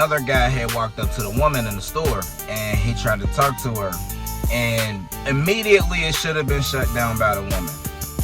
guy had walked up to the woman in the store and he tried to talk to her. And immediately it should have been shut down by the woman.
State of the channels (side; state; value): both; identical; correlation 1.00